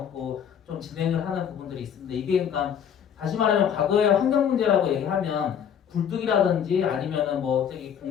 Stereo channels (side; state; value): right; quieter; 8.4 dB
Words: 좀 진행을 하는 부분들이 있습니다. 이게 그러니까 다시 말하면 과거에 환경 문제라고 얘기하면 굴뚝이라든지 아니면은 뭐 저기